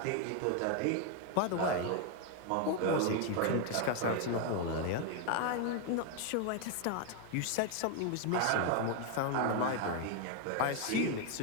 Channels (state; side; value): different; both; correlation 0.01